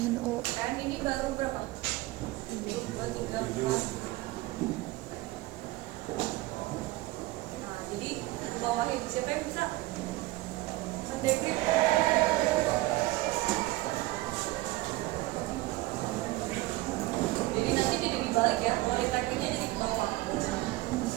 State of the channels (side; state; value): left; quieter; 19.2 dB